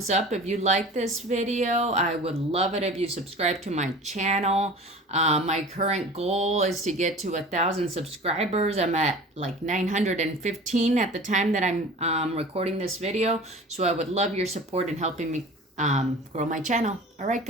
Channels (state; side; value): normal; both; correlation 0.40